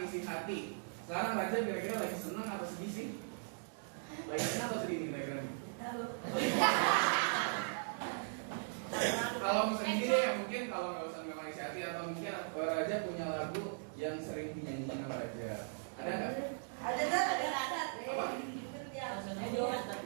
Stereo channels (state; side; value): silent; left; digital silence